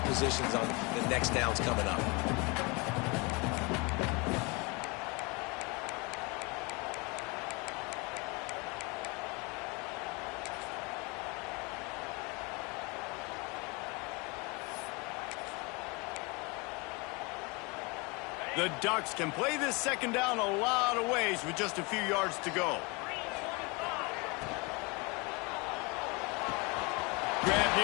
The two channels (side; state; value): right; quieter; 27.8 dB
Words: on the next downs coming up. The Ducks can play this second down a lot of ways with just a few yards to go. Grab